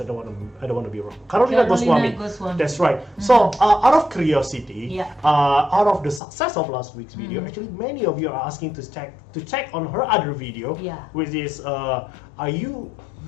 I don't want to be wrong. Karolina Goswami. That's right. So out of curiosity, out of the success of last week's video, actually many of you are asking to check on her other video, which is are you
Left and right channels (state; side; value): drops out; right; at 6.2 s